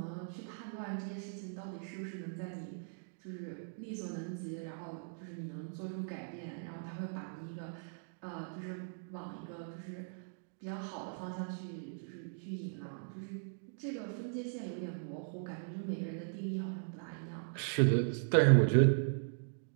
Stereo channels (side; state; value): left; silent; digital silence